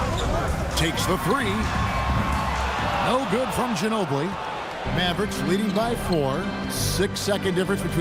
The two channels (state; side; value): identical; both; correlation 1.00